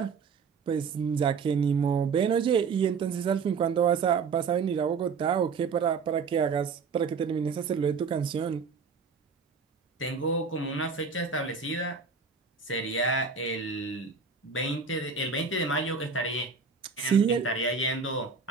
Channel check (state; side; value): quieter; left; 5.3 dB